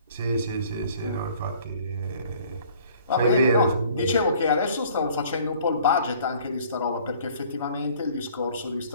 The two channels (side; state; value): both; inverted; correlation -0.55